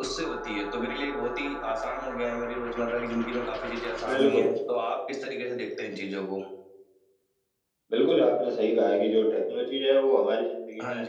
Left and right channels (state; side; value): identical; both; correlation 1.00